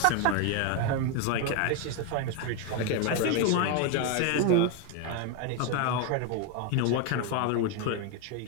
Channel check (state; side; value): different; both; correlation 0.01